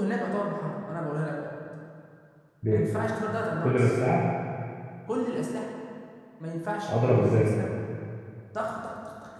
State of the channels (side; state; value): both; identical; correlation 1.00